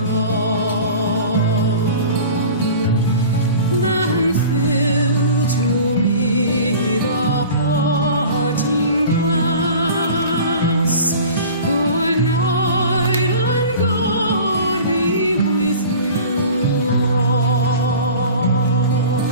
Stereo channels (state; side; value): inverted; both; correlation -0.40